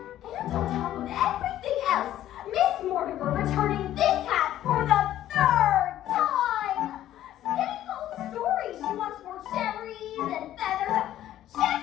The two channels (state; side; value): quieter; right; 12.7 dB